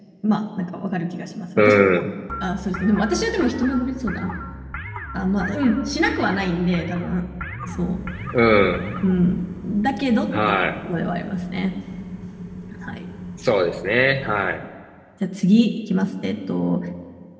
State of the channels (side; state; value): both; identical; correlation 1.00